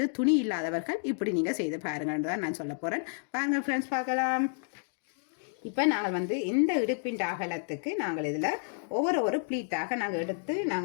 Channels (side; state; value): right; silent; digital silence